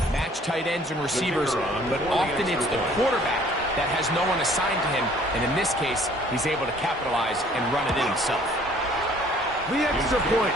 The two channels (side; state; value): both; normal; correlation 0.56